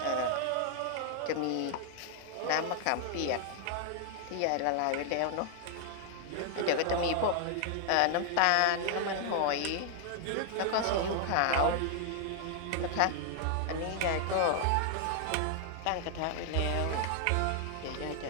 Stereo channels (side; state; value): both; different; correlation 0.00